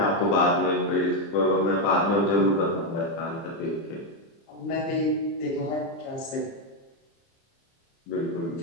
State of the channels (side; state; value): right; late; 30 ms